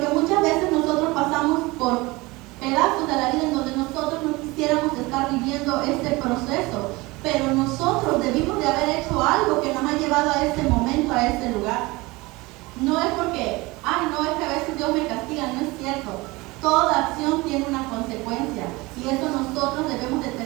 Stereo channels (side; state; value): left; quieter; 22.6 dB